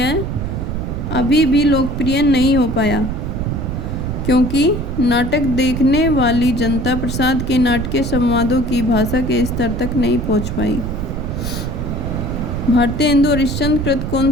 अभी भी लोकप्रिय नहीं हो पाया, क्योंकि नाटक देखने वाली जनता प्रसाद के नाटकीय संवादों की भाषा के स्तर तक नहीं पहुंच पाई। भारतेंदु हरिश्चंद्र कृत कौन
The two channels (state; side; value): noise; right; rumble, 4 dB below the sound